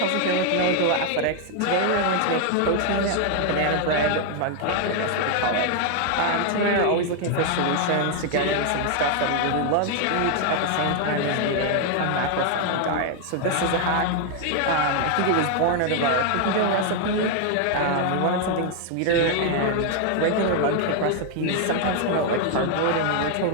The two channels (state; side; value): different; both; correlation 0.00